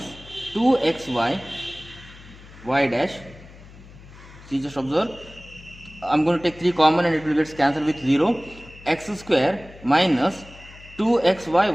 2xy y dash. See, just observe, I'm going to take 3 common and it will get cancelled with 0. X square minus 2xy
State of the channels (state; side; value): noise; left; hum, 20 dB below the sound